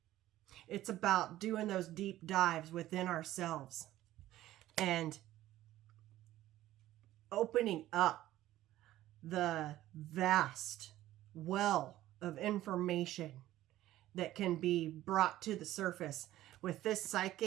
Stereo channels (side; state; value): left; quieter; 14.6 dB